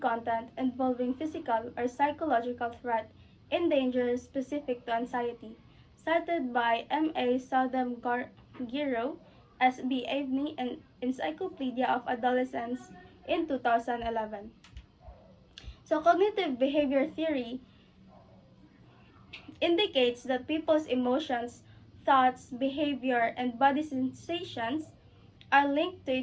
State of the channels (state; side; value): identical; both; correlation 1.00